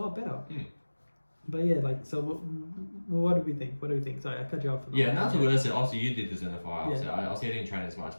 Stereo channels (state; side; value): inverted; both; correlation -1.00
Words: better. But yeah, like, so what do we think? Sorry, I cut you off. Yeah, and that's what I said. Obviously, you did this in the fire. Obviously, I didn't train as much,